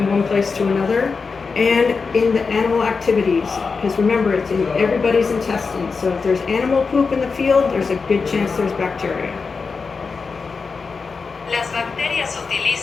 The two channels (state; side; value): quieter; right; 4.8 dB